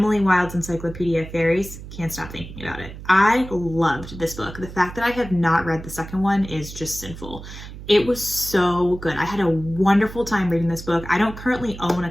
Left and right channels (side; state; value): right; noise; hum, 13 dB below the sound